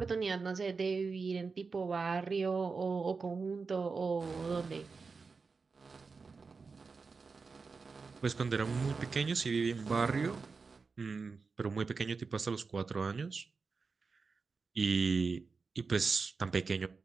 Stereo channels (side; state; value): left; quieter; 4.6 dB